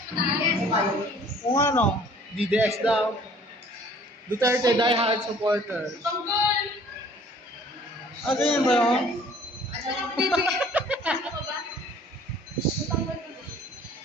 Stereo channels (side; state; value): both; normal; correlation 0.54